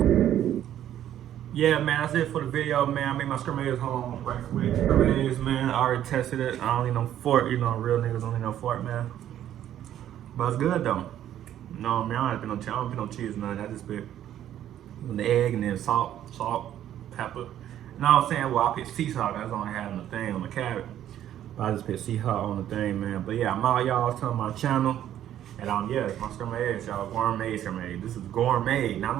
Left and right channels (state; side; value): quieter; left; 11.4 dB